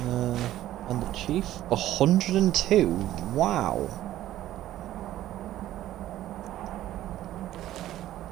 And the chief, 102. Wow.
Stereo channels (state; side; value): quieter; left; 13.7 dB